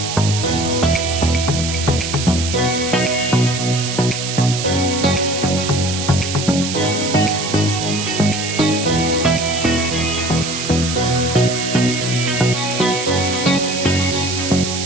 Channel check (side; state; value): right; noise; hiss, 5 dB below the sound